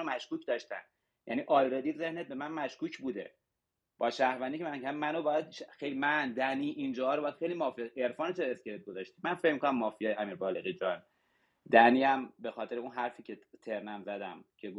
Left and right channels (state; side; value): identical; both; correlation 1.00